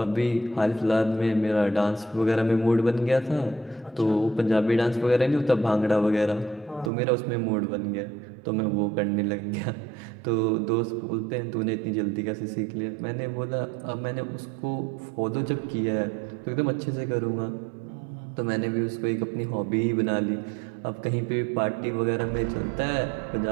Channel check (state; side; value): drops out; left; at 6.9 s